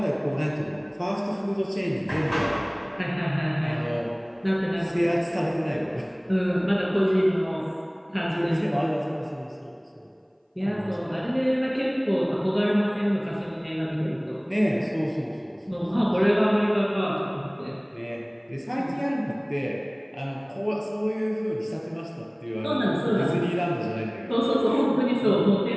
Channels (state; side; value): identical; both; correlation 1.00